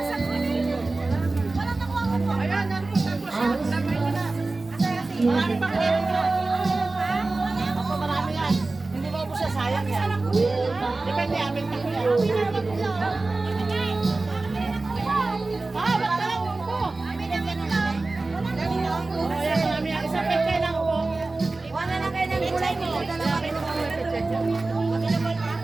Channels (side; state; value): left; quieter; 3.3 dB